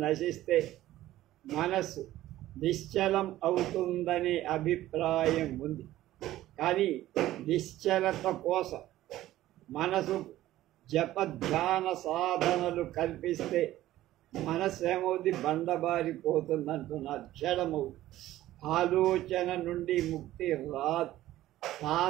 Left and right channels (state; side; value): quieter; left; 14.7 dB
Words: నశిస్తే మనస్సు నిశ్చలం అవుతుందనే అభిప్రాయం ఉంది. కానీ నిశ్చలత కోసం మనసు ధ్యాన సాధనలు కల్పిస్తే మనస్సు ఏమవుతుంది? బండబారిపోతుందంటున్నారు, జడమవుతుంది. ఆలోచన నుండి ముక్తి రాదు.